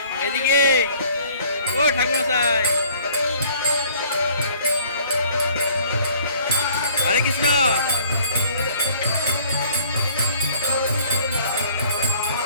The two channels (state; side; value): inverted; both; correlation -0.55